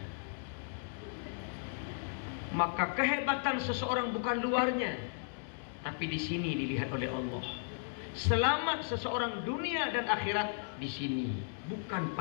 Maka kehebatan seseorang bukan luarnya, tapi di sini dilihat oleh Allah. Selamat seseorang dunia dan akhirat di sini, bukan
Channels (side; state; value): right; silent; digital silence